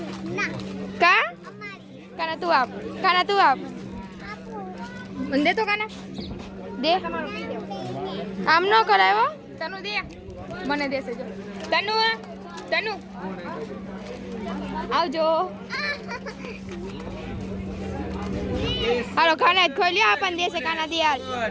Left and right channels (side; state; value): both; identical; correlation 1.00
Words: કા કાના તું આપ. કાના તું આપ. મને દે તો કાના દે. આમ ન કરાયો. તનુ દે. મને દેશે જો. તનુ તનુ આવજો. હાલો ખાના જ ખોઈ લ્યો. આપણને દેશે કાના દે હાલ.